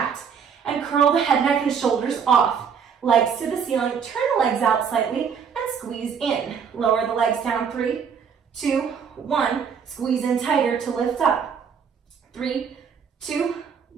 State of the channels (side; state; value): left; quieter; 6.8 dB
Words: and curl the head, neck, and shoulders off. Legs to the ceiling, turn the legs out slightly, and squeeze in. Lower the legs down, 3, 2, 1. Squeeze in tighter to lift up. 3, 2,